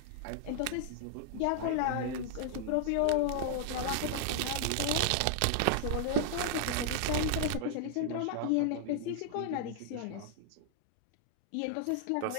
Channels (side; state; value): both; different; correlation -0.01